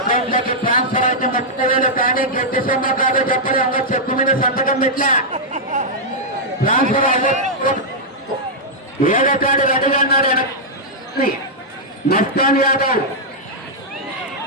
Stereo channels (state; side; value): normal; both; correlation -0.07